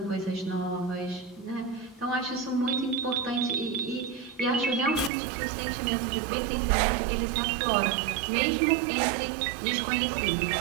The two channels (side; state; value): left; drops out; at 5.1 s